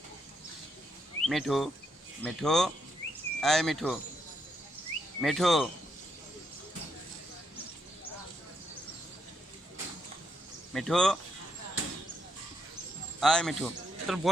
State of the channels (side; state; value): both; normal; correlation 0.78